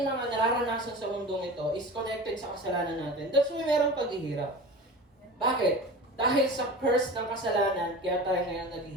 mga nararanasan sa mundong ito is connected sa kasalanan natin. That's why merong paghihirap. Bakit? Dahil sa curse ng kasalanan, kaya tayo ngayon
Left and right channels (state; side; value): normal; both; correlation 0.33